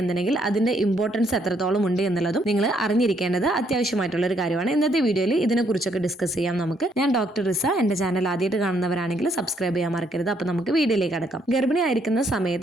എന്നുണ്ടെങ്കിൽ അതിന്റെ ഇമ്പോർട്ടൻസ് എത്രത്തോളം ഉണ്ട് എന്നുള്ളതും നിങ്ങൾ അറിഞ്ഞിരിക്കേണ്ടത് അത്യാവശ്യമായിട്ടുള്ള ഒരു കാര്യമാണ്. ഇന്നത്തെ വീഡിയോയിൽ ഇതിനെക്കുറിച്ചൊക്കെ ഡിസ്കസ് ചെയ്യാം നമുക്ക്. ഞാൻ ഡോക്ടർ റിസ. എന്റെ ചാനൽ ആദ്യമായിട്ട് കാണുന്നവരാണെങ്കിൽ സബ്സ്ക്രൈബ് ചെയ്യാൻ മറക്കരുത്. അപ്പൊ നമുക്ക് വീഡിയോയിലേക്ക് കടക്കാം. ഗർഭിണി ആയിരിക്കുന്ന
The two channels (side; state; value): both; normal; correlation 0.71